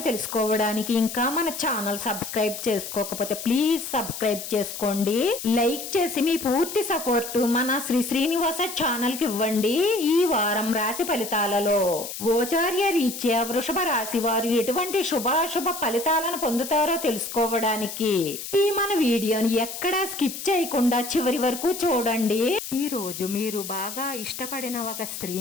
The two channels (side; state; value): left; noise; hiss, 8 dB below the sound